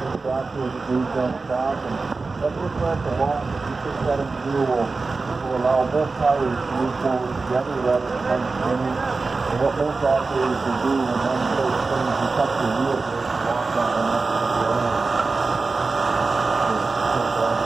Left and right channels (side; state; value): left; quieter; 3.9 dB